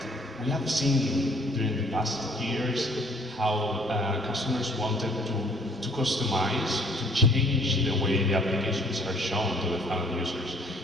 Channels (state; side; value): normal; both; correlation 0.59